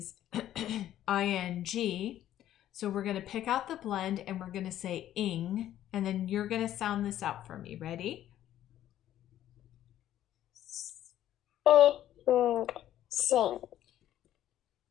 ing. So we're going to pick out the blend and we're going to say ing, and then you're going to sound this out for me. Ready? Sing.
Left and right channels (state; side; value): quieter; right; 12.2 dB